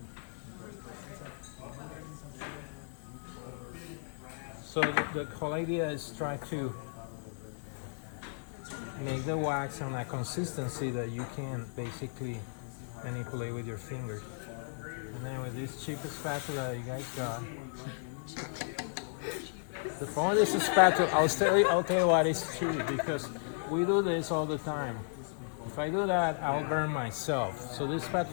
So the whole idea is try to make the wax on a consistency that you can basically manipulate with your fingers. And then with this cheap spatula that you guys got. The point is a spatula. I'll tell you what is cheap because we do this all the time. If I do that, I'll burn myself. So this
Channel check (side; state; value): right; silent; digital silence